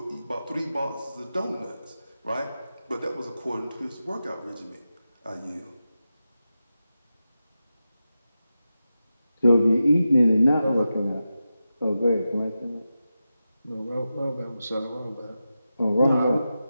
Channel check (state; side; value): inverted; both; correlation -0.91